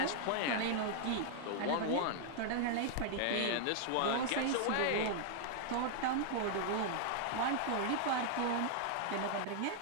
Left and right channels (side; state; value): both; different; correlation -0.01